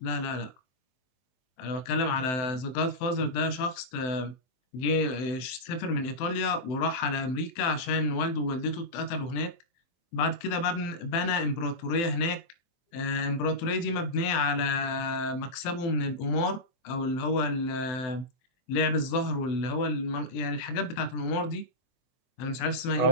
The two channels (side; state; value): right; late; 23 ms